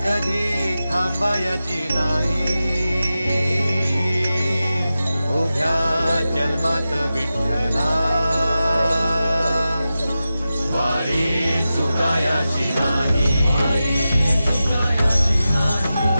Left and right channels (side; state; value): both; inverted; correlation -0.93